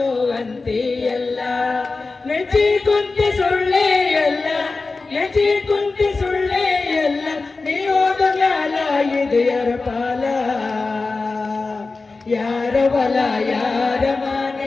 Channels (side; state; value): right; quieter; 3.8 dB